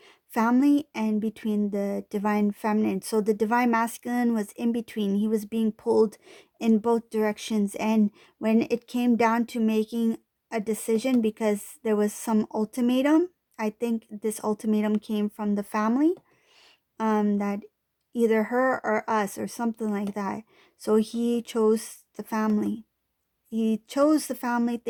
family and between the divine feminine. So the divine masculine was in between. He was being pulled in both directions, and when it came down to making a decision, because there was some ultimatum, I think this ultimatum came from the family, that either her or us or something like that. So he chose the family. He chose the family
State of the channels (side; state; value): both; identical; correlation 1.00